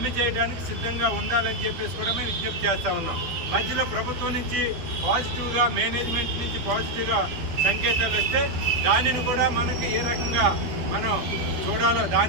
చేయడానికి సిద్ధంగా ఉండాలని చెప్పేసి కూడా మేము విజ్ఞప్తి చేస్తూ ఉన్నాం. మధ్యలో ప్రభుత్వం నుంచి పాజిటివ్గా, మేనేజ్మెంట్ నుంచి పాజిటివ్గా సంకేతాలు వస్తే దానిని కూడా మనకి ఏ రకంగా మనం చూడాలో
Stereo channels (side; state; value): left; late; 12 ms